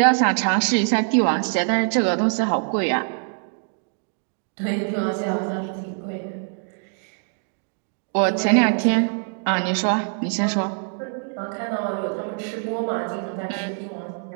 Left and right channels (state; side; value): silent; left; 57 dB below the other